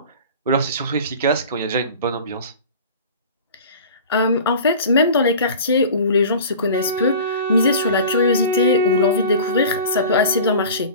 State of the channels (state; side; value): inverted; both; correlation -0.38